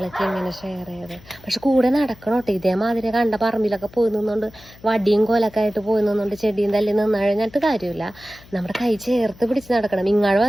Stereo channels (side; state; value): left; noise; hum, 23 dB below the sound